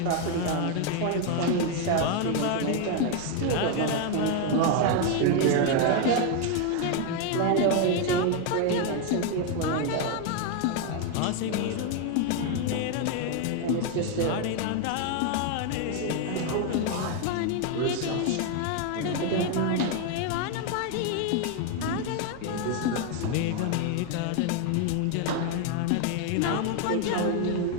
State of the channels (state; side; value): different; both; correlation 0.01